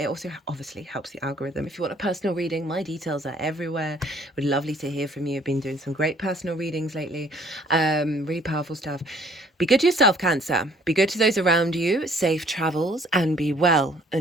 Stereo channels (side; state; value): both; normal; correlation 0.59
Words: also obviously helps the algorithm. If you want a personal reading, my details are everywhere. Would lovely to hear from you. I've been doing some great personal readings lately. Really powerful stuff. Be good to yourself, Cancer. Be good to those around you. Safe travels and be well